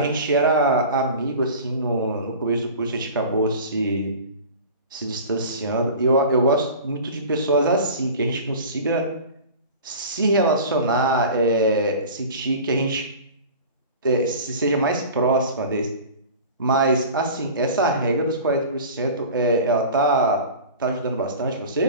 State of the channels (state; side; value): inverted; both; correlation -0.38